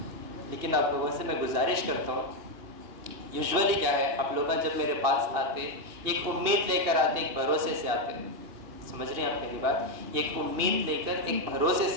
लेकिन आप लोगों से मैं गुजारिश करता हूँ, यूजुअली क्या है, आप लोग जब मेरे पास आते एक उम्मीद लेकर आते, एक भरोसे से आते। समझ रहे हैं आप मेरी बात? एक उम्मीद लेकर, एक भरोसे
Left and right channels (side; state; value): left; late; 2.8 ms